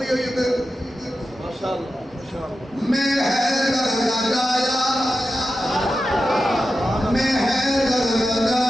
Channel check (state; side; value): normal; both; correlation 0.91